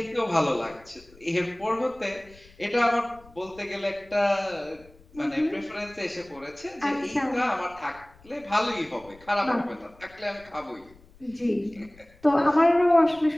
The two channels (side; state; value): left; noise; rumble, 25 dB below the sound